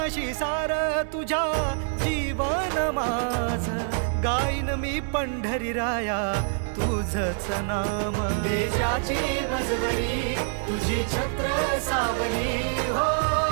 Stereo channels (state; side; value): silent; left; 61 dB below the other